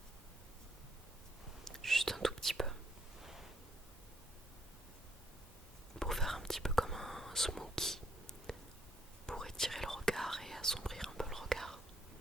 Juste un tout petit peu. Pour faire un petit peu comme un smoky. Pour étirer le regard et assombrir un peu le regard.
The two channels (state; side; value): normal; both; correlation 0.71